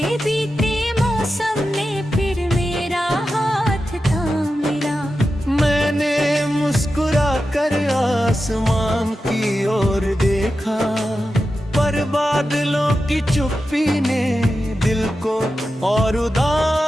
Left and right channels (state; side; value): normal; both; correlation 0.91